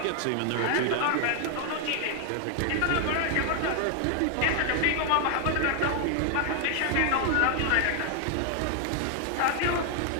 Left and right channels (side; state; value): both; different; correlation 0.00